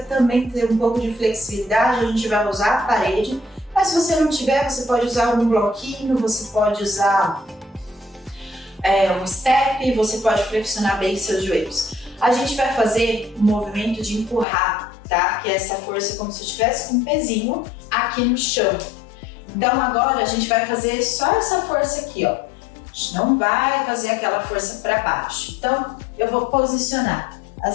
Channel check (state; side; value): drops out; right; at 14.5 s